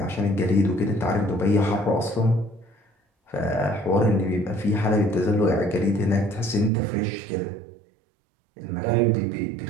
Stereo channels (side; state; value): left; drops out; at 6.7 s